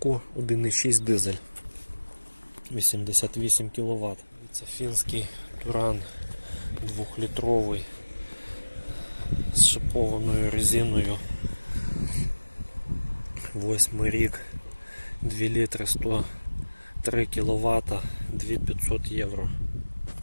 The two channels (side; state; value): both; inverted; correlation -1.00